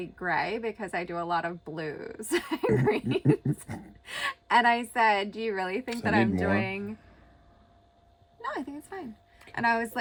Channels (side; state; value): both; identical; correlation 1.00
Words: gray because I do a lot of blues and greens. And I said, "Do you really think that I'm doing?" No, I think it's fine. And I was